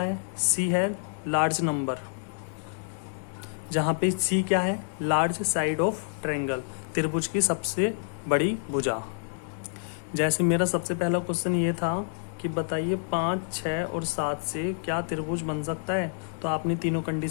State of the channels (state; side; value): silent; right; digital silence